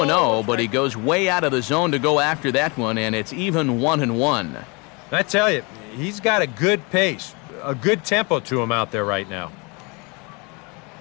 but he goes way out of the zone to go after that one, and it's even 1-1. I tell you, he's got a good pace, a good tempo to him out there right now.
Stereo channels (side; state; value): right; quieter; 29.6 dB